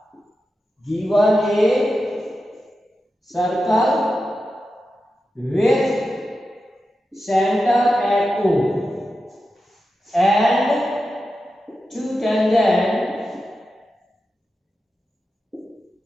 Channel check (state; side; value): normal; both; correlation 0.91